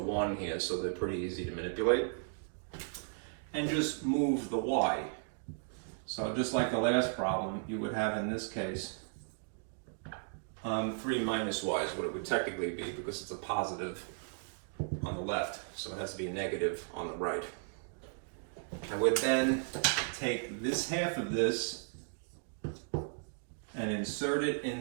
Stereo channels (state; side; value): silent; left; digital silence